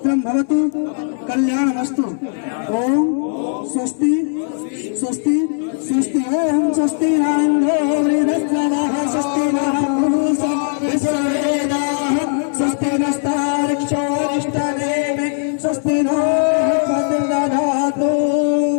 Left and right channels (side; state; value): right; silent; 67 dB below the other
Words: भवतु कल्याणमस्तु ओम स्वस्ति स्वस्ति स्वस्ति ओम स्वस्ति न इन्द्रो वृद्धश्रवः स्वस्ति नः पूषा विश्ववेदाः स्वस्ति नस्तार्क्ष्योरिष्टनेमि स्वस्ति नो भद्रदधातु